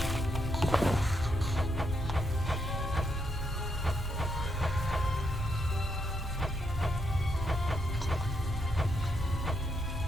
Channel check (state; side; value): normal; both; correlation 0.78